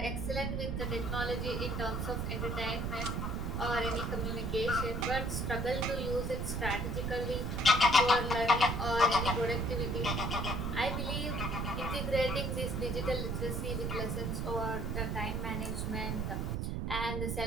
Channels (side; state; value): right; noise; rumble, 1 dB below the sound